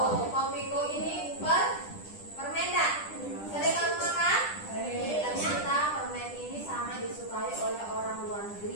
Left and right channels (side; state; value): right; late; 10 ms